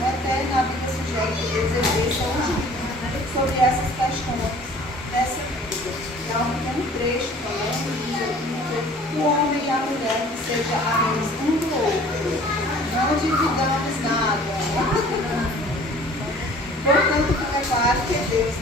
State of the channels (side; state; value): both; normal; correlation 0.50